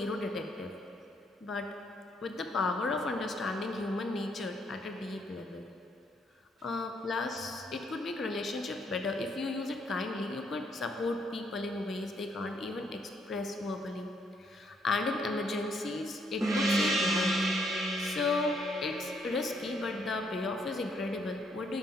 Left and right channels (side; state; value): both; normal; correlation 0.71